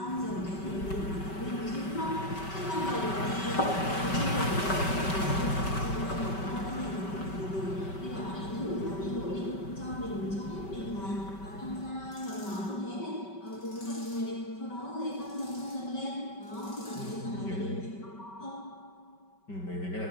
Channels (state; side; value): late; right; 5.2 ms